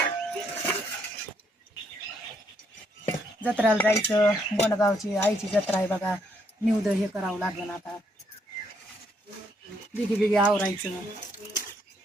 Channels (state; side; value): normal; both; correlation 0.73